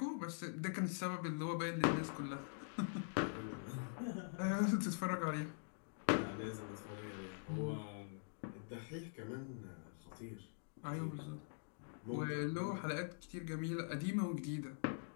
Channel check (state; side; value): silent; right; digital silence